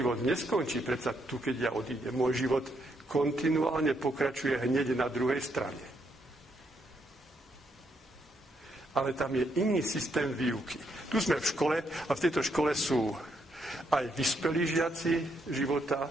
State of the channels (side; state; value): both; normal; correlation 0.76